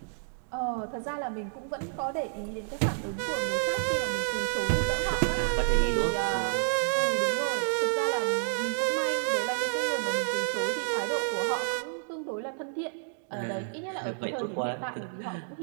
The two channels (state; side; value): silent; left; digital silence